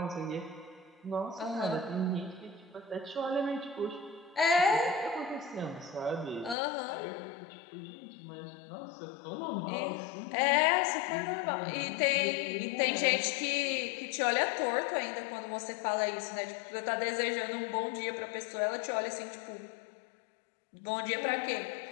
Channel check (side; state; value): right; drops out; at 6.6 s